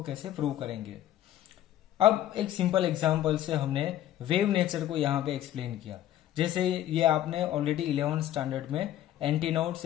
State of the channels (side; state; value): right; quieter; 12.6 dB